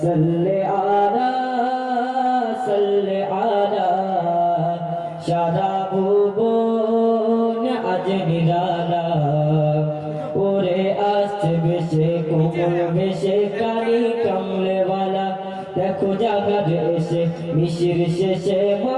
সাল্লি আলা সারা ভুবন আজ নিরালা ওরে আসছে বেশে কোমল বেশে কালি কমলেওয়ালা দেখো জাগার এসে মিশির শেষে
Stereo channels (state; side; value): identical; both; correlation 1.00